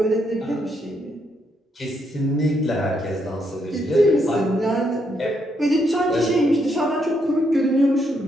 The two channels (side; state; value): both; normal; correlation 0.77